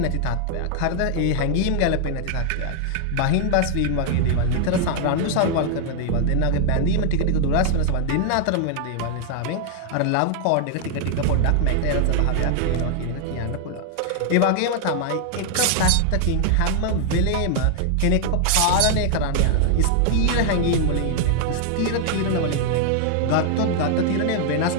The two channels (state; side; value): different; both; correlation 0.00